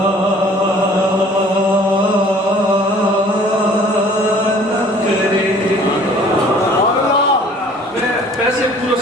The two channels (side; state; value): both; normal; correlation 0.52